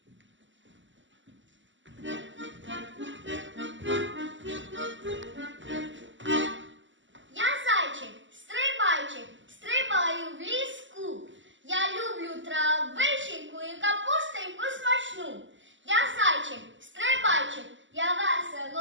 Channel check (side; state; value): left; late; 0.54 ms